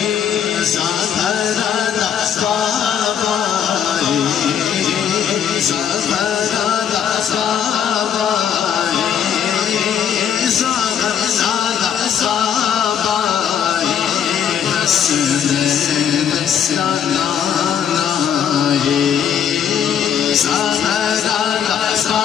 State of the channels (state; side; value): quieter; right; 8.5 dB